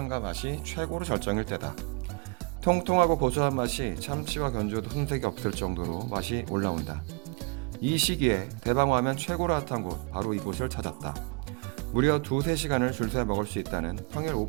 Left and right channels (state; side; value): quieter; left; 32.3 dB